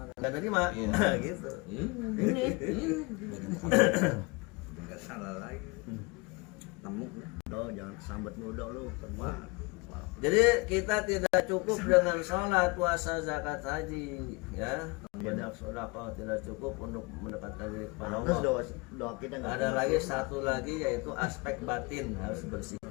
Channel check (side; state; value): right; quieter; 27.0 dB